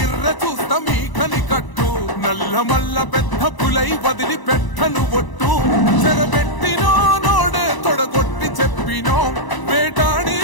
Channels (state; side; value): late; right; 1.0 ms